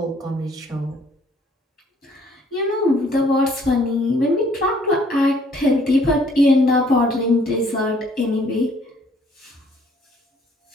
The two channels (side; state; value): both; normal; correlation 0.62